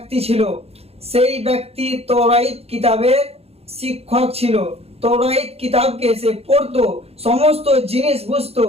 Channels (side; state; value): left; late; 0.29 ms